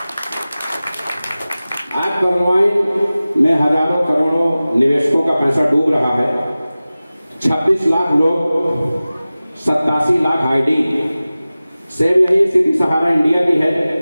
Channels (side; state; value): both; inverted; correlation -0.97